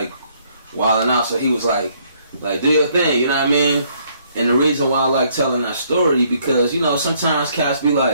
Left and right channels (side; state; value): both; inverted; correlation -0.67